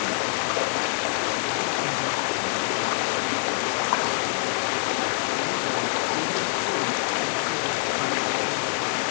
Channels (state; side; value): silent; right; 61 dB below the other